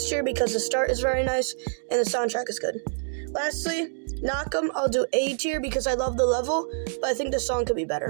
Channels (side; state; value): left; silent; digital silence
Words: tier because the start is very nice and the soundtrack is good. Lastly, Knock 'em, I'll do A tier because I love the level, but I think the song could be